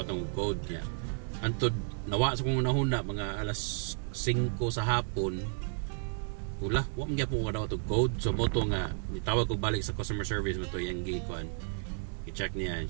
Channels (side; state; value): left; silent; 56 dB below the other